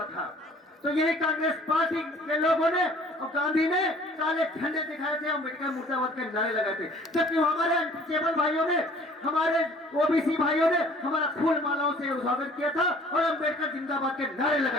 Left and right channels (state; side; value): normal; both; correlation 0.53